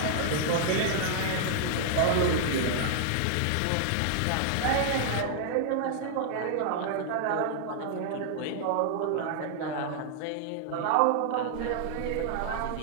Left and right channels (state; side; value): different; both; correlation -0.01